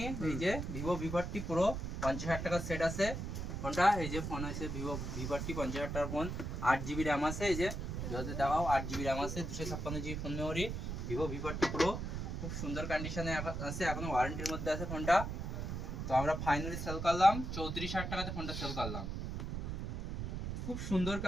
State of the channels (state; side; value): noise; right; rumble, 4 dB below the sound